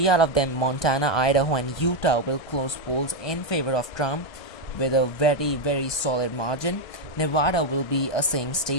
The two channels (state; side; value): late; right; 1.6 ms